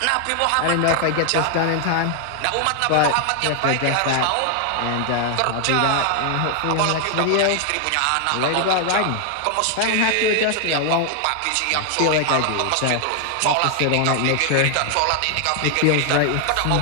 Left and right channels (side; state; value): both; different; correlation 0.00